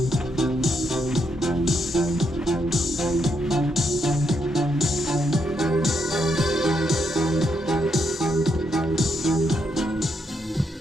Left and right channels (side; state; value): both; normal; correlation 0.78